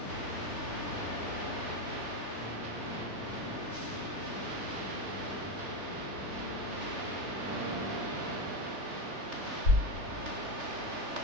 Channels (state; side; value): late; left; 3.3 ms